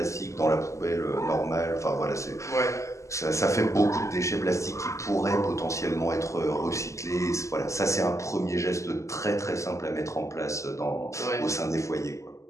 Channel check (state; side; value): late; right; 0.15 ms